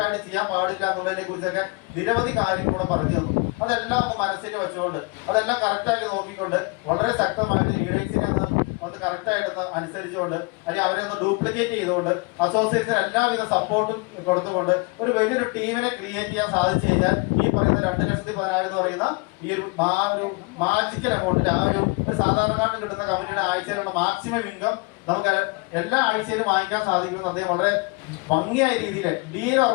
ചെയ്യാൻ പാടില്ല എന്നുള്ളതിനെ കുറിച്ചൊക്കെ നിരവധി കാര്യങ്ങൾ കൂടെ പറഞ്ഞു തന്നു. അതെല്ലാം ഒന്ന് മനസ്സിൽ വെച്ചുകൊണ്ട് അതെല്ലാം കറക്റ്റായിട്ട് നോക്കിക്കൊണ്ട് വളരെ ശക്തമായിട്ട് ലീഡേഴ്സിനെ അത് കറക്റ്റായിട്ടൊന്ന് അനുസരിച്ചുകൊണ്ട് അല്ലെങ്കിൽ അവരെ ഒന്ന് ഡ്യൂപ്ലിക്കേറ്റ് ചെയ്തുകൊണ്ട് അസോസിയേറ്റ്സിന് എല്ലാവിധ സപ്പോർട്ടും കൊടുത്തുകൊണ്ട് ഒരു വലിയൊരു ടീമിനെ ക്രിയേറ്റ് ചെയ്യാൻ സാധിച്ചു കഴിഞ്ഞാൽ ഈ പറയുന്ന 2,10,10,000 എന്ന് പറയുന്ന ഈ ഒരു മാജിക്കൽ എമൗണ്ടിൽ ആ ഒരു സാധാരണക്കാരന് കിട്ടുന്ന കമ്പനിയുടെ ആഴ്ചയിലുള്ള മാക്സിമം ഇൻകം നമുക്ക് എല്ലാ ആഴ്ചയിലും വാങ്ങിക്കാൻ സാധിക്കുമെന്ന് അദ്ദേഹം വളരെ ഭംഗിയായ രീതിയിൽ ഡീൽ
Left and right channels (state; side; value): quieter; right; 29.2 dB